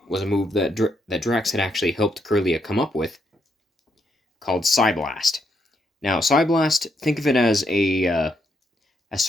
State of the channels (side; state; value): both; normal; correlation 0.78